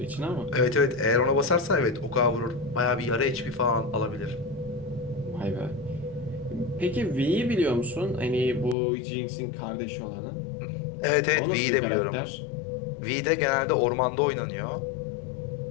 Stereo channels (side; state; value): right; drops out; at 8.8 s